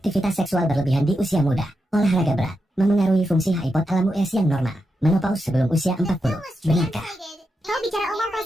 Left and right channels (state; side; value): normal; both; correlation 0.87